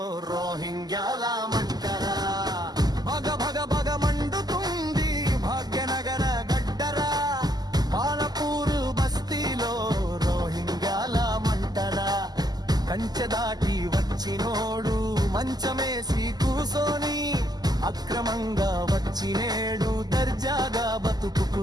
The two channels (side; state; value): left; late; 0.20 ms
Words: రోహింగ్యాల మంటరా. భగ భగ భగ మండుతుంది భాగ్యనగర గడ్డరా, బాలపూర్ బస్తీలో రోహింగ్యాల మంటరా. కంచె దాటి వచ్చినోడు మంచమేసి కూసోని, అక్రమంగా వచ్చినేడు దర్జాగా